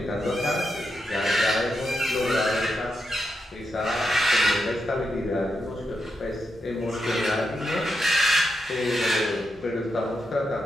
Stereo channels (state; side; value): normal; both; correlation 0.85